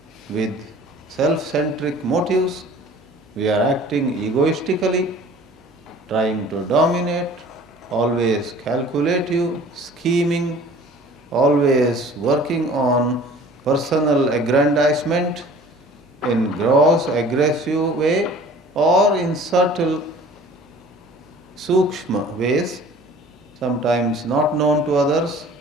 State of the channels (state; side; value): normal; both; correlation 0.48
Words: with self-centric motives. We are acting egoistically, trying to dominate, always calculative, scheming, always working on personal aggrandizement in gross, aggressive way or in subtle, sukshma ways, sometimes not known to others,